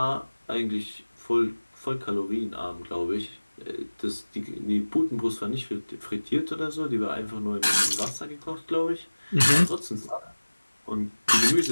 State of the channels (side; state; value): both; inverted; correlation -1.00